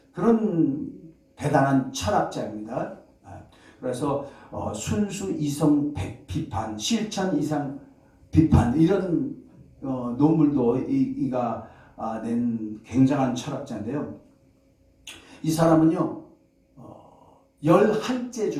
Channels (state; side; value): identical; both; correlation 1.00